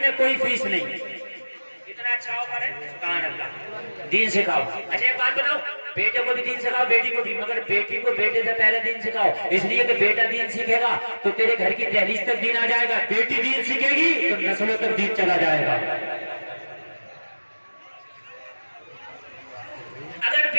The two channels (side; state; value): both; inverted; correlation -1.00